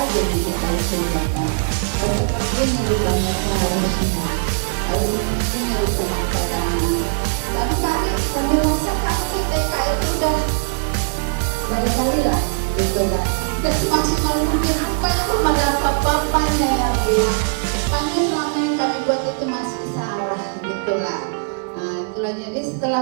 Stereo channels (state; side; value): silent; left; digital silence